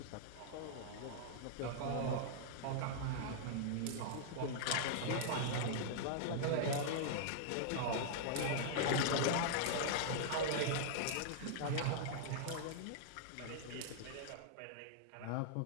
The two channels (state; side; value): different; both; correlation -0.01